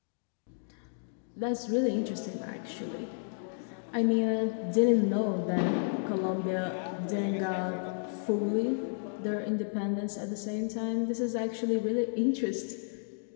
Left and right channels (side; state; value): right; silent; digital silence